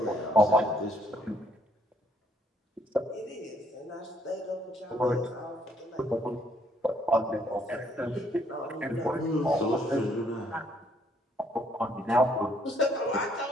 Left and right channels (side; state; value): both; normal; correlation 0.67